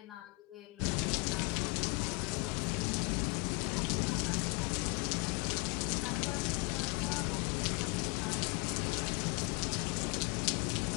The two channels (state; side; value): quieter; right; 27.1 dB